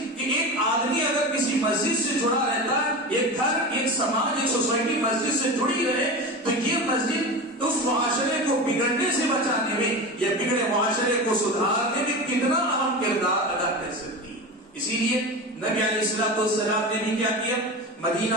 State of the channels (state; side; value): normal; both; correlation 0.27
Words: کہ ایک آدمی اگر کسی مسجد سے جڑا رہتا ہے، ایک گھر، ایک سماج، ایک سوسائٹی مسجد سے جڑی رہے، تو یہ مسجد اس معاشرے کو بگڑنے سے بچانے میں یا بگڑے معاشرے کو سدھارنے میں کتنا اہم کردار ادا کر سکتی ہے. اسی لیے نبی علیہ السلام نے بھی کیا کیا،